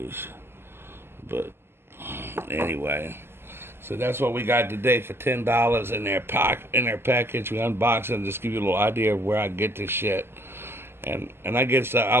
But anyway, so that's what we got today for $10 in their package. We unbox it and just give you a little idea of where I get this shit. And I guess I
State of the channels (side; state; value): left; late; 0.11 ms